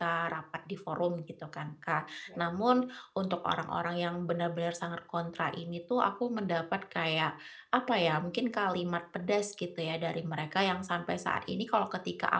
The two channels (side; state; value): both; identical; correlation 1.00